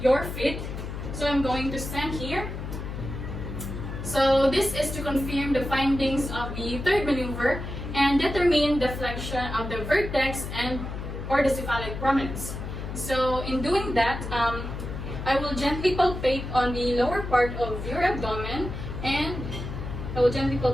your feet. So I'm going to stand here. So this is to confirm the findings of the third maneuver and determine the flexion of the vertex and or the cephalic prominence. So in doing that, I will gently palpate on the lower part of your abdomen and I will gently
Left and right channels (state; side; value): noise; left; hum, 7 dB below the sound